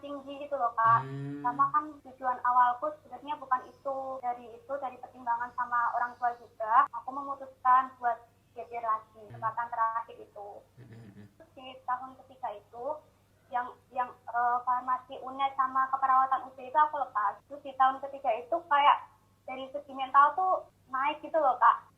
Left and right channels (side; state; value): both; identical; correlation 1.00